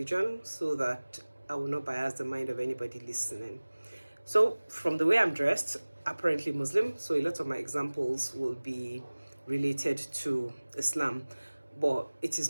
so that I will not bias the mind of anybody listening. So, from the way I'm dressed, apparently Muslim, so a lot of my examples will be related to Islam, but it is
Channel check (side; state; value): both; inverted; correlation -1.00